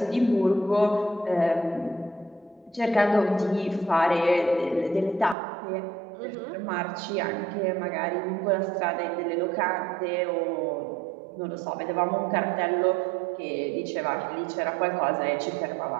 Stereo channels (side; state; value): left; drops out; at 5.4 s